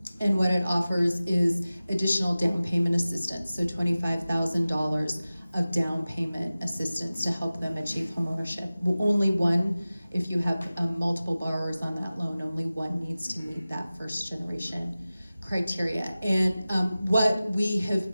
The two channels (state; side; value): inverted; both; correlation -0.96